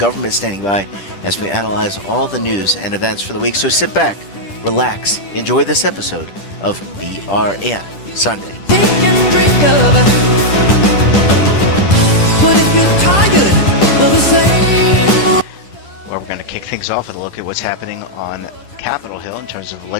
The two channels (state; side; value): late; right; 10 ms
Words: standing by as we analyze all the news and events for the week. So sit back, relax, enjoy this episode of BRN Sunday. Take and drink of it. But if you're tired of the same. Well, we're going to kick things off with a look at what's happening on Capitol Hill in terms of